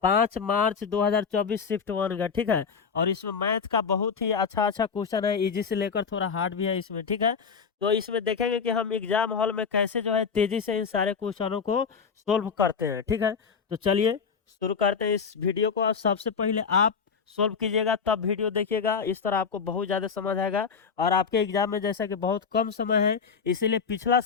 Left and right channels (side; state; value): right; quieter; 5.9 dB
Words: 5 मार्च 2024 शिफ्ट 1 का, ठीक है। और इसमें मैथ का बहुत ही अच्छा अच्छा क्वेश्चन है, इजी से लेकर थोड़ा हार्ड भी है इसमें, ठीक है। तो इसमें देखेंगे कि हम एग्जाम हॉल में कैसे जो है तेजी से इन सारे क्वेश्चनों को सोल्व करते हैं, ठीक है। तो चलिए शुरू करते हैं इस वीडियो को। और सबसे पहले आप सोल्व कीजिएगा तब वीडियो देखिएगा, इस तरह आपको बहुत ज़्यादा समझ आएगा। और आपके एग्जाम में जैसा कि बहुत कम समय है, इसीलिए पिछला